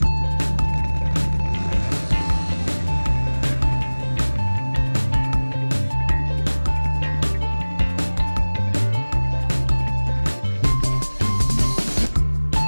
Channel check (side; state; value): both; inverted; correlation -1.00